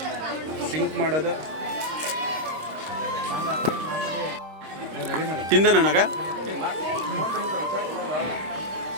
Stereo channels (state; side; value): late; left; 26 ms